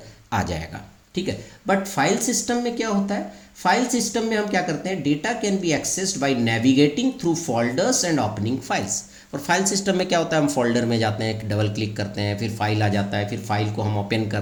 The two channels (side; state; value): both; identical; correlation 1.00